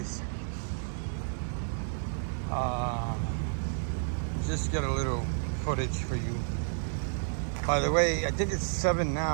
Just get a little footage for you. By the way, I think it's 7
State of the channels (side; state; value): left; silent; digital silence